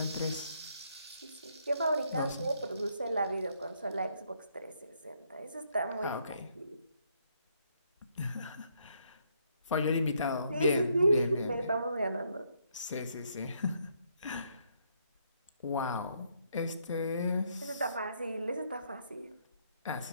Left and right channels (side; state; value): both; inverted; correlation -0.73